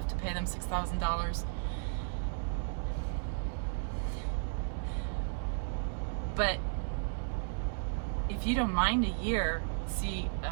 to pay them $6,000. But if you don't mind a year, see,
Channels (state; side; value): silent; left; digital silence